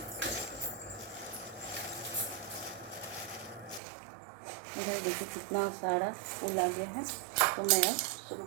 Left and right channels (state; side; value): drops out; left; at 3.8 s